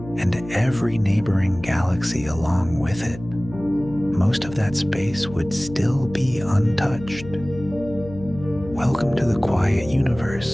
every neighboring galaxy along with it, most of that space would still be untouched. Welcome to the quiet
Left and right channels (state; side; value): noise; left; hum, 14 dB below the sound